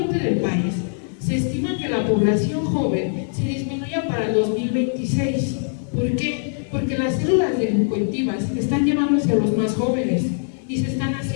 del país, se estima que la población joven se disminuya para el 2026. ¿Por qué? Porque las células delincuentivas están llevándose a los más jóvenes y se están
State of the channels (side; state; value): right; silent; digital silence